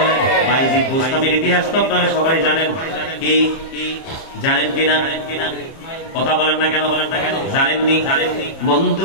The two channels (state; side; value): late; right; 30 ms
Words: বাইজিদ বোস্তামের ইতিহাস তো আপনারা সবাই জানেন। কি জানেন কিনা? কথা বলেন না কেন? জানেননি?